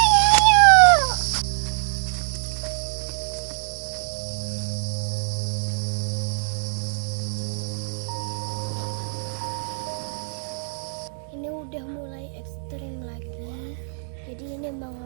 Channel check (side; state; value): left; silent; 62 dB below the other